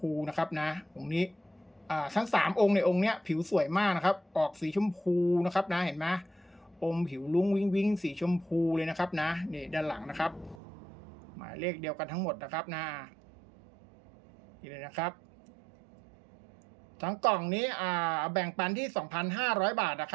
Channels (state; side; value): drops out; left; at 10.6 s